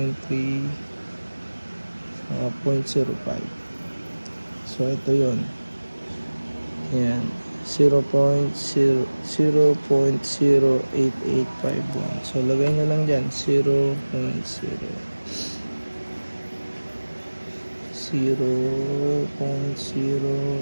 saka 0.05. So, ito yun. Ayan. 0.08851. So, lagay nyo lang dyan.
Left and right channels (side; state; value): both; inverted; correlation -1.00